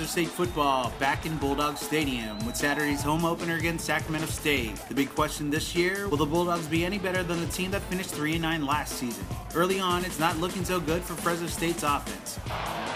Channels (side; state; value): both; identical; correlation 1.00